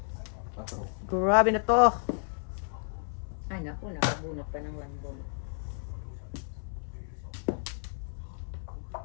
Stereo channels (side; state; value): right; silent; 56 dB below the other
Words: Quatro. Grabe na to. Ay, naku, nakabunot pa ng 1 ball.